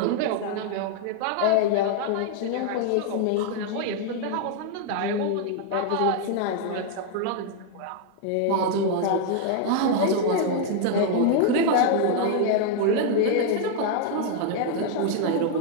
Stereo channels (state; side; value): different; both; correlation 0.00